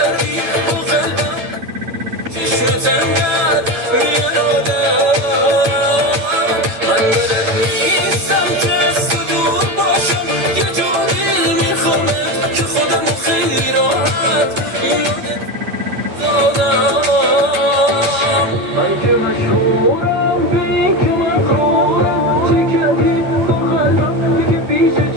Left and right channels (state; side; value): late; left; 9.1 ms